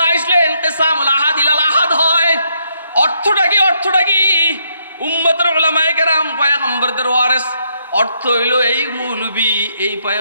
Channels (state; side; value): inverted; both; correlation -0.75